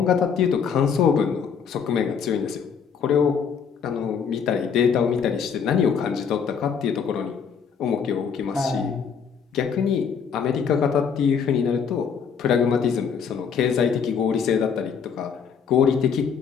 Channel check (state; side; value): quieter; right; 6.7 dB